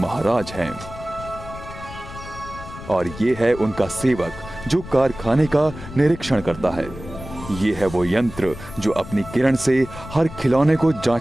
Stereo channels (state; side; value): noise; left; rumble, 13 dB below the sound